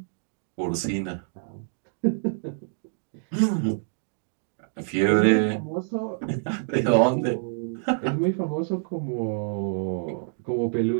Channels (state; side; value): silent; left; digital silence